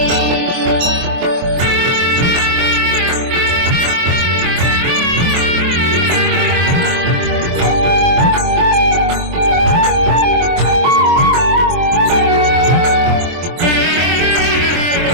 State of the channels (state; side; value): late; left; 23 ms